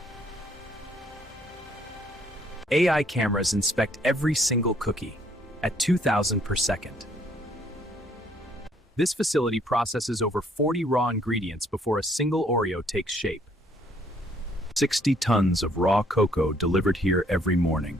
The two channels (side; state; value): both; normal; correlation 0.64